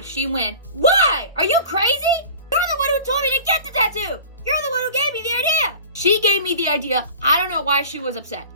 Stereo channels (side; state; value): both; inverted; correlation -0.40